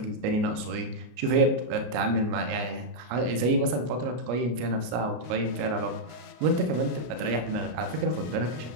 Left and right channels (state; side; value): late; left; 33 ms